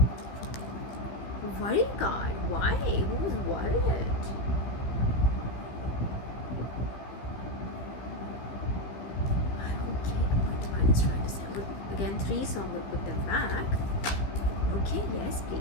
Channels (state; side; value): late; right; 15 ms